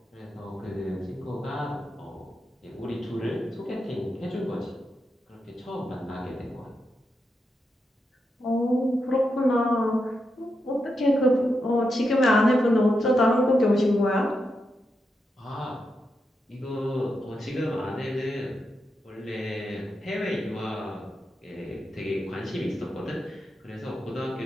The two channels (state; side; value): normal; both; correlation 0.86